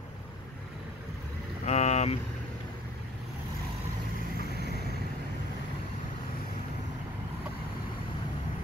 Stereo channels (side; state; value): both; normal; correlation 0.53